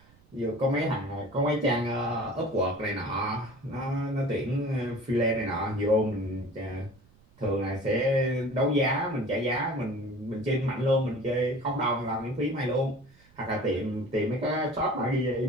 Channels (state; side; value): noise; right; rumble, 28 dB below the sound